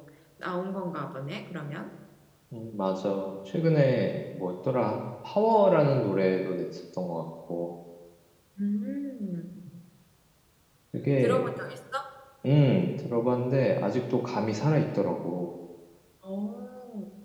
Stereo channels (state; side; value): identical; both; correlation 1.00